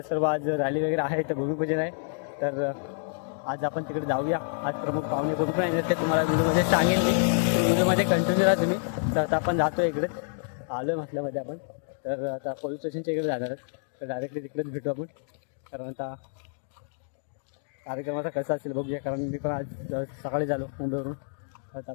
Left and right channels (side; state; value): right; silent; digital silence